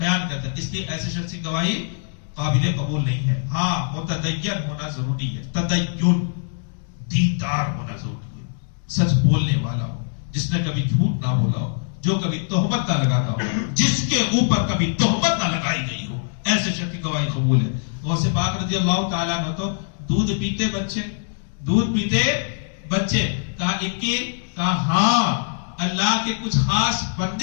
کرتا ہے۔ اس لیے ایسے شخص کی گواہی قابل قبول نہیں ہے۔ ہاں متدین ہونا ضروری ہے، تدین دیندار ہونا ضروری ہے، سچ بولنے والا ہو، جس نے کبھی جھوٹ نہ بولا ہو، جو کبھی تہمت نہ لگاتا ہو، جس کے اوپر کبھی تہمت نہ لگائی گئی ہو، ایسے شخص کی گواہی قبول ہے۔ غوث پاک رضی اللہ تعالیٰ عنہ تو دودھ پیتے بچے کہا ہاں اللہ کے کچھ خاص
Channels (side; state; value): right; silent; digital silence